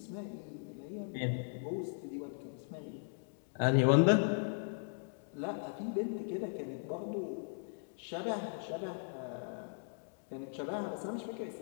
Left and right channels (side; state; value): right; silent; digital silence